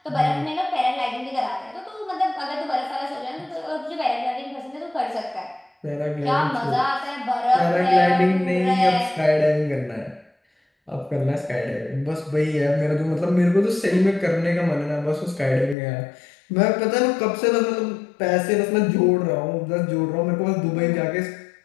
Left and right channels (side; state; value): right; drops out; at 15.8 s